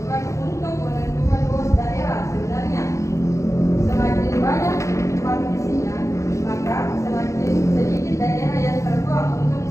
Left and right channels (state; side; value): late; right; 0.15 ms